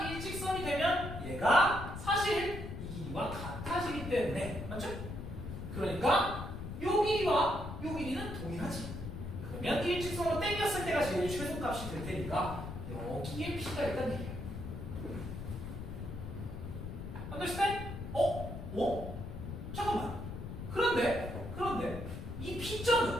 일직선이 되면 얘가 사실 이 길이와 같아지기 때문에, 맞죠? 그러니까 요 길이와 요 길이는 동일하지. 그러면 일직선으로 당겼을 때가 제일 최소값이 될 테니까 여기에 P가 있다는 얘기예요. understand? 잠깐만. 그런데 이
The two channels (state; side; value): noise; left; rumble, 7 dB below the sound